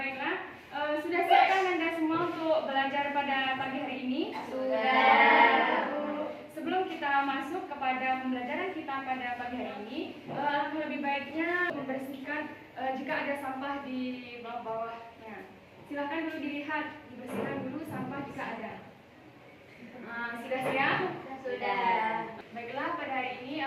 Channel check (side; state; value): both; identical; correlation 1.00